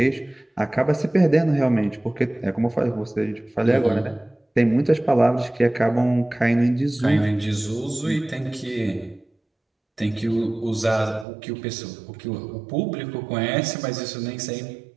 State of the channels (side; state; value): left; drops out; at 11.2 s